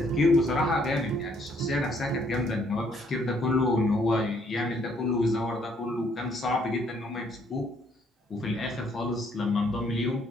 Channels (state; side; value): normal; both; correlation 0.67